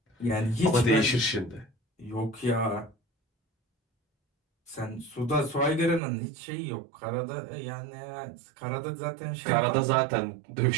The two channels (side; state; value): left; drops out; at 6.0 s